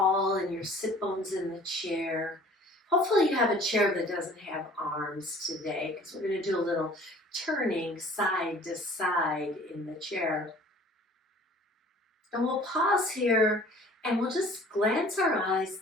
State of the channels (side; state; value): both; normal; correlation 0.49